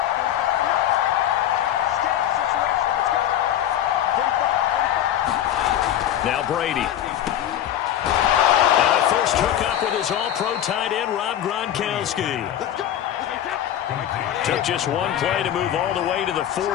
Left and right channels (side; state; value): right; quieter; 11.2 dB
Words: Now Brady. And a first hookup with his all-pro tight end, Rob Gronkowski. Took just one play to move all the way to the